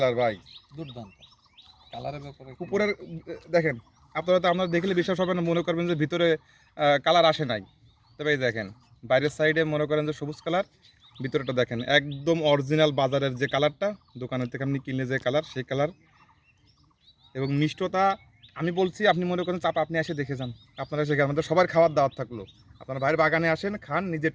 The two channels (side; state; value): both; identical; correlation 1.00